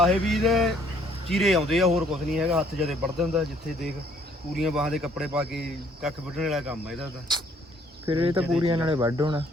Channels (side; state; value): both; normal; correlation 0.63